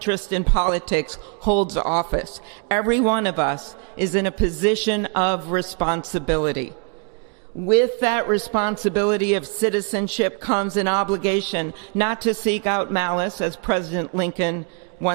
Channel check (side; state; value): left; quieter; 39.8 dB